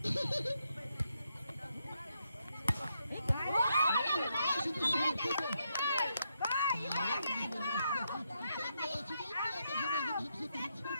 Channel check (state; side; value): inverted; both; correlation -0.80